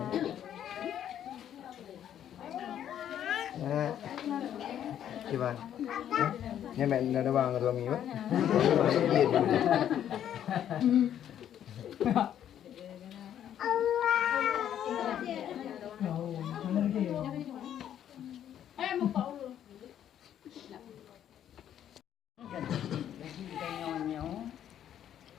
Gimana? Ini main ada bang dua minggu.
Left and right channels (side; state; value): right; quieter; 10.3 dB